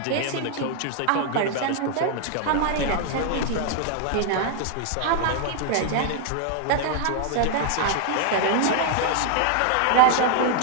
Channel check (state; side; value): different; both; correlation 0.00